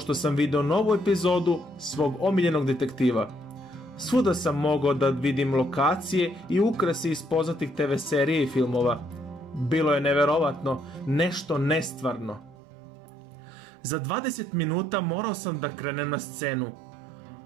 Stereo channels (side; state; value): left; drops out; at 12.6 s